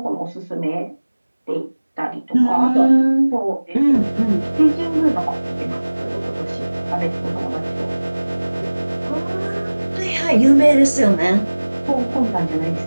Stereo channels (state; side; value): inverted; both; correlation -1.00